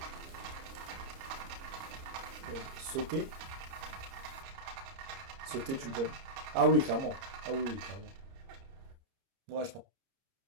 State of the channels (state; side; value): late; left; 30 ms